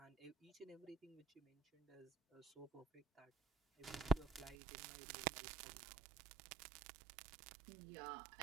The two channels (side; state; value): left; drops out; at 4.5 s